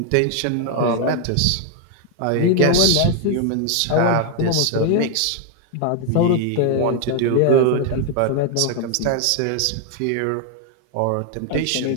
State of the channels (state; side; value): different; both; correlation 0.00